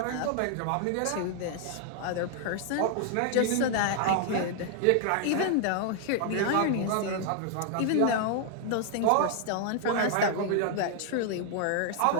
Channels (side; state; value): both; different; correlation 0.00